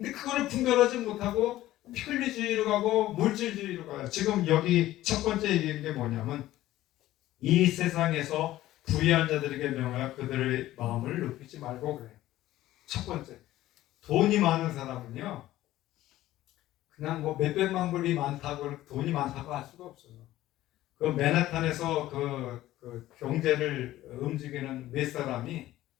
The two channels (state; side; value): quieter; right; 15.1 dB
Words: 그거를 분별하지 못하고 편리주의로 가고 물질주의로 가요. 지금 여기 첫 번째 얘기한 게 뭐냐면 이 세상에서 부유한 자들에게 명하여 그들의 마음을 높이지 말고 그래요. 첫 번째, 돈이 많은 사람은요 그냥 뭐 몇백만 불이 많다고 돈이 많다고 할 수가 없어요. 그 맨하탄에서 그 경제를 움직이는 몇 사람이